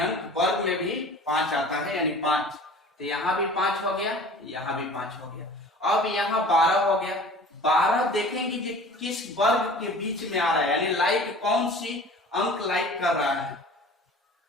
वर्ग में भी 5 आता है, यानी 5, तो यहाँ भी 5 हो गया, यहाँ भी 5 हो गया। अब यहाँ 12 हो गया, 12 देखेंगे कि किस वर्ग के बीच में आ रहा है, यानी लाइक कौन सी अंक लाइक कर रहा है,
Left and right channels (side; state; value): both; normal; correlation 0.43